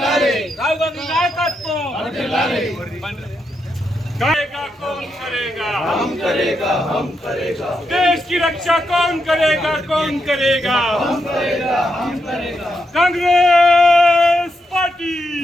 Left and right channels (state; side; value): normal; both; correlation 0.82